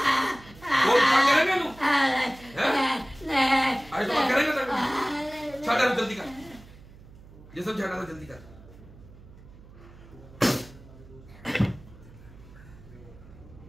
जल्दी कर, ये सब झाड़ा जल्दी कर।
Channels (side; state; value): right; noise; hum, 21 dB below the sound